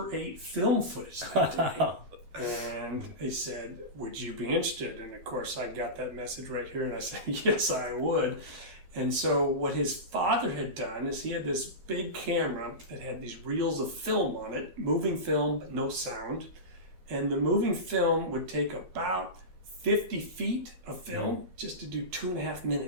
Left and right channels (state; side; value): late; left; 12 ms